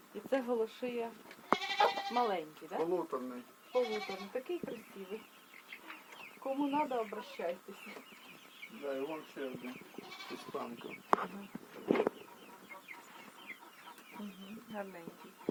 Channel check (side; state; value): both; identical; correlation 1.00